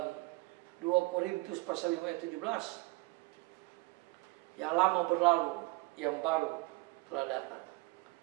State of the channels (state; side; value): quieter; left; 24.6 dB